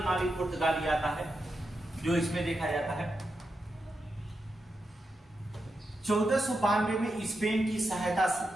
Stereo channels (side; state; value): both; normal; correlation 0.87